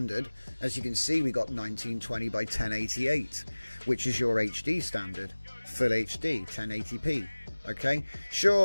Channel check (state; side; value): inverted; both; correlation -1.00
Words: as you can see, we got 1920 by 1088, which is your HD standard, full HD, 1080p. Okay,